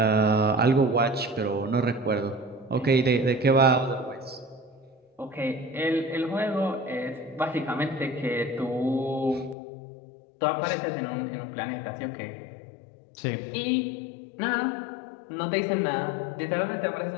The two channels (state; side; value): drops out; right; at 9.6 s